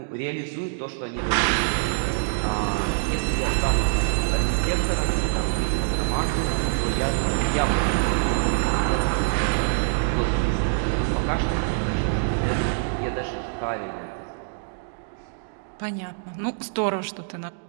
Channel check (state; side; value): silent; left; digital silence